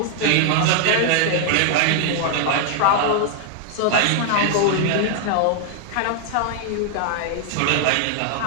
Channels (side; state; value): both; different; correlation 0.00